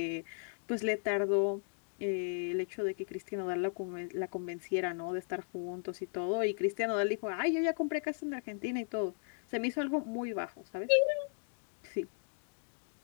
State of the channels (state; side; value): silent; right; digital silence